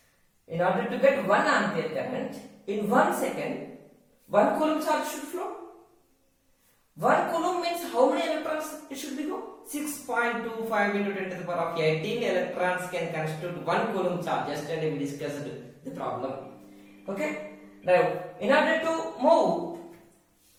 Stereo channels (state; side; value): identical; both; correlation 1.00